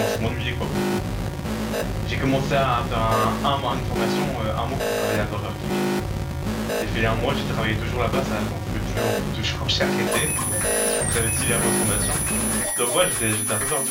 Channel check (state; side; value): identical; both; correlation 1.00